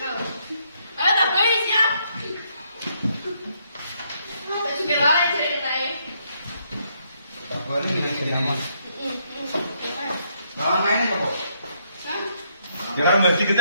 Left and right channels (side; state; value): both; inverted; correlation -0.73